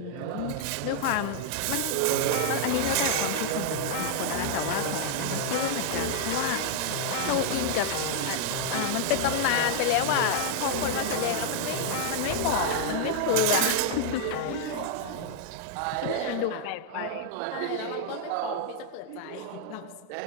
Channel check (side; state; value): both; different; correlation -0.01